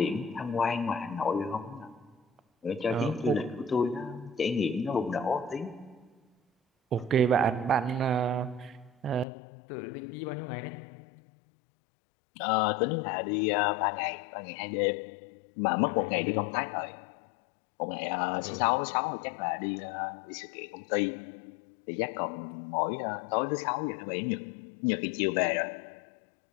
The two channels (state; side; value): drops out; right; at 9.2 s